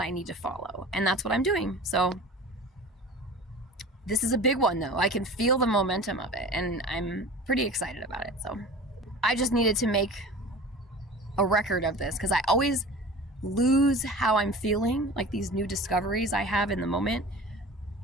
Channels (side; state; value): both; normal; correlation 0.38